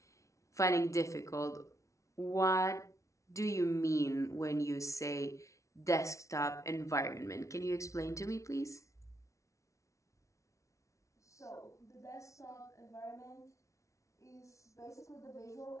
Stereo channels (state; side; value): late; right; 0.15 ms